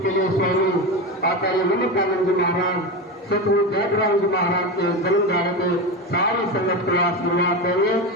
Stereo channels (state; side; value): normal; both; correlation 0.19